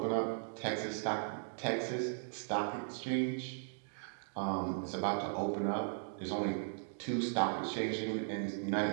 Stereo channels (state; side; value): silent; left; digital silence